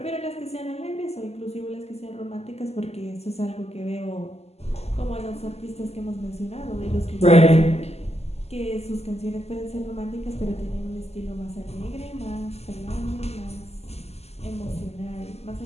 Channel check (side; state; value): right; late; 0.30 ms